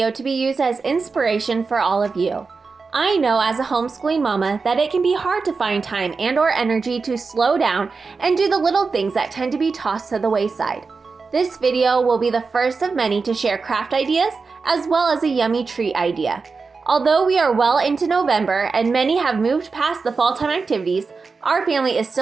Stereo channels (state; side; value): quieter; left; 4.6 dB